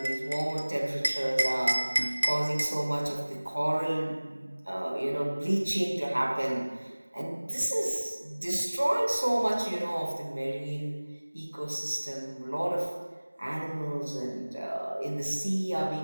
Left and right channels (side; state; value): both; inverted; correlation -1.00